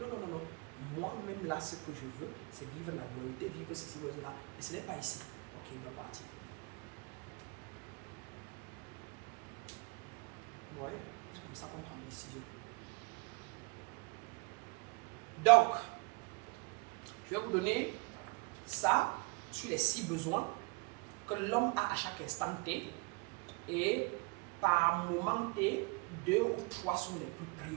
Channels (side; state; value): left; quieter; 29.9 dB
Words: non, non, non. Moi-même, là, ce que je veux, c'est vivre la dualité, vivre ceci, vivre cela. Et ce n'est pas ici. Ok, il va partir. Ouais, c'est comme ça qu'on prend une décision. Donc, je vais vous donner ça sur les 6 besoins que l'homme a à chaque instant T. Et par moment T, 2 ou 3 sont les plus